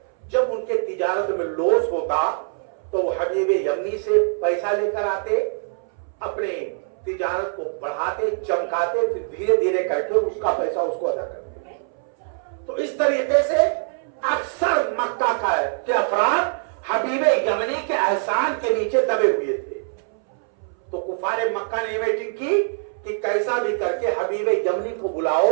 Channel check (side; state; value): left; silent; 63 dB below the other